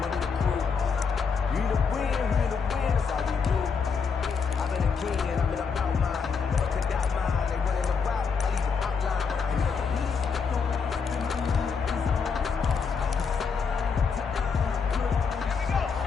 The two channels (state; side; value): quieter; right; 5.6 dB